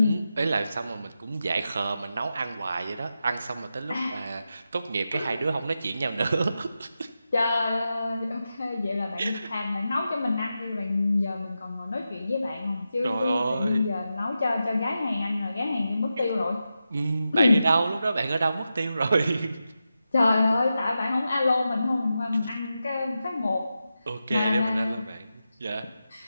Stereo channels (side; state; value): both; inverted; correlation -0.90